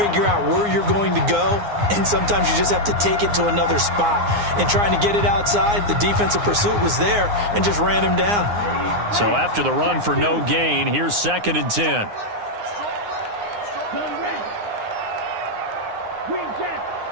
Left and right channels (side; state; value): left; late; 9.7 ms